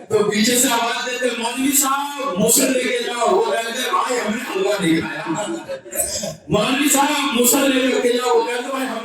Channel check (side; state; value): both; identical; correlation 1.00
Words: تو پیچھے سے آواز دیتے مولوی صاحب موزل لے کے جاؤ۔ وہ کہتے بھائی ہم نے حلوہ نہیں کھایا۔ مولوی صاحب موزل لے کر کے جاؤ۔ وہ کہتے بھائی